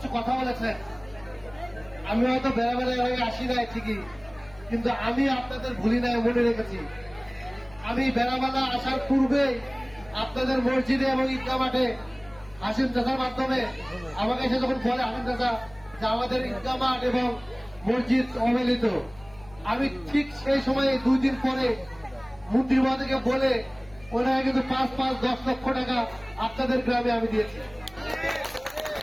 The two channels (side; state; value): left; noise; hum, 24 dB below the sound